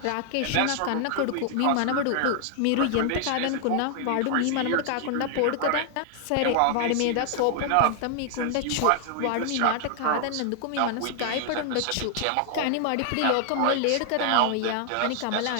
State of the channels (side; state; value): both; different; correlation 0.00